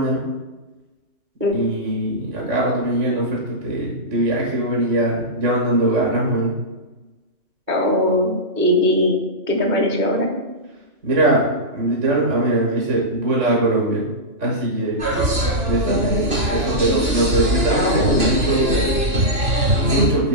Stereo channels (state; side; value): late; left; 2.9 ms